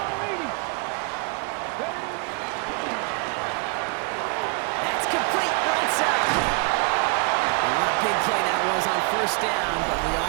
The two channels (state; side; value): quieter; left; 32.1 dB